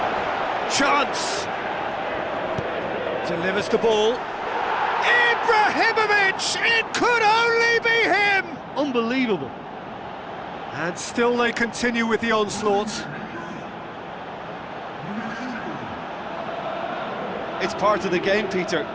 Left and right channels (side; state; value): both; identical; correlation 1.00